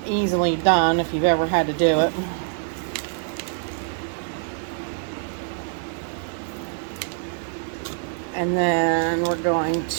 easily done if you've ever had to do it. And then we're going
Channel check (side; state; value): left; silent; digital silence